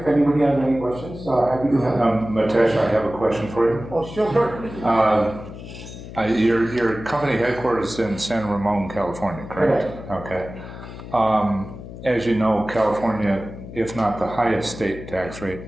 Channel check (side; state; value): left; noise; hum, 13 dB below the sound